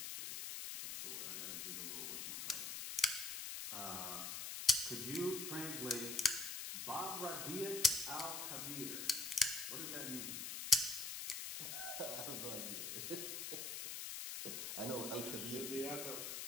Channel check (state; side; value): noise; left; hiss, 4 dB below the sound